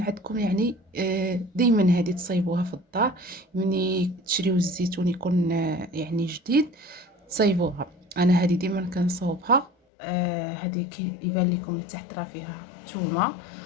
عندكم، يعني دائما هذه تصايبوها في الدار. ملي تشريو الزيتون يكون يعني جديد، تصايبوها. انا هذه ديما كنصاوبها. هذه كيبان لكم تحت راه فيها ثومه،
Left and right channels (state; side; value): drops out; right; at 9.7 s